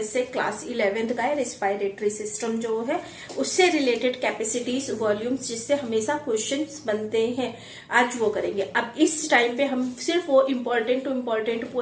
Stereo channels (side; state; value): both; identical; correlation 1.00